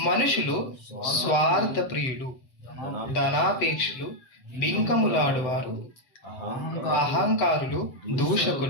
మనుషులు స్వార్థ ప్రియులు, ధనాపేక్షులు, బింకములాడువారు, అహంకారులు,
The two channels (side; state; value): right; late; 7.9 ms